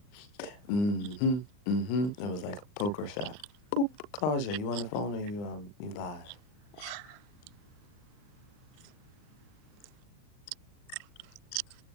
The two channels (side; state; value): right; late; 39 ms